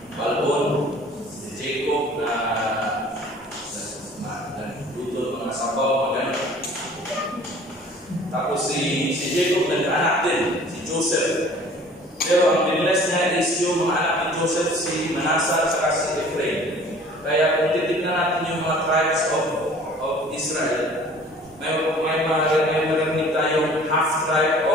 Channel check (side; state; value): both; normal; correlation 0.49